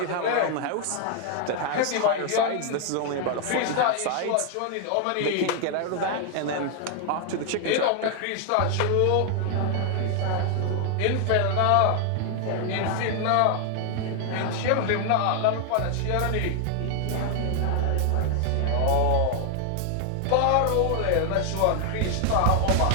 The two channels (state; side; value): different; both; correlation 0.00